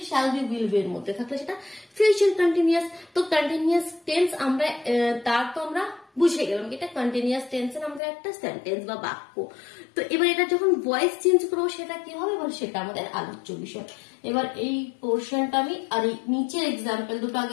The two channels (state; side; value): drops out; right; at 8.0 s